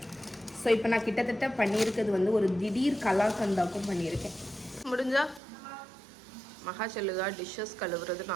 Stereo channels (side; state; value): left; drops out; at 5.4 s